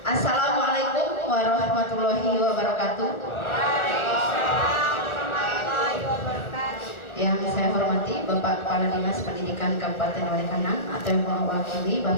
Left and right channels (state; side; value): late; right; 1.3 ms